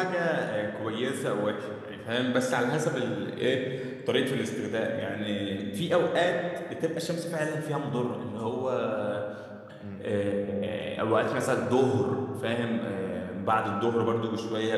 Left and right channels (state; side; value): identical; both; correlation 1.00